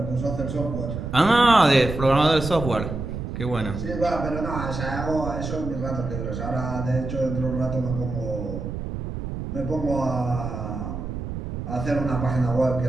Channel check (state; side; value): noise; right; rumble, 6 dB below the sound